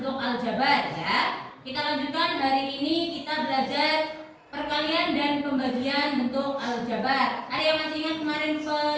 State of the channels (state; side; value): identical; both; correlation 1.00